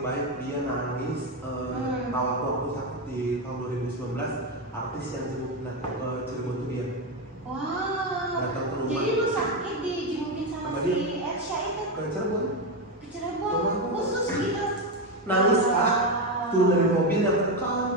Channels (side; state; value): both; normal; correlation 0.11